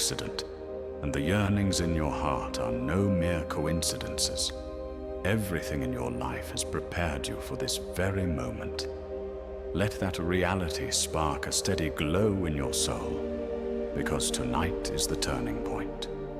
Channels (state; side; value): identical; both; correlation 1.00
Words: and the yearnings in your heart are no mere coincidences. Everything in your life has prepared you for this very moment. Let that reality spark a steady glow in your soul, because tonight is the turning point.